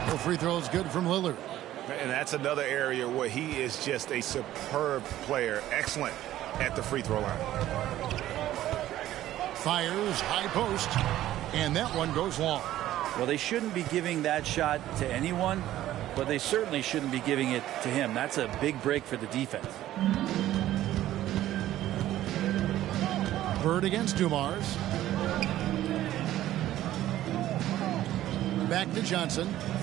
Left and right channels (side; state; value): left; quieter; 13.7 dB